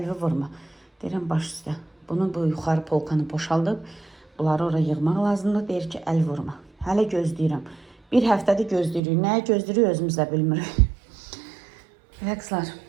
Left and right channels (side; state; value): left; drops out; at 9.0 s